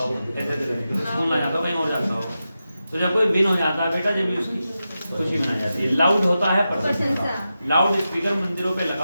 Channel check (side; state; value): both; inverted; correlation -0.91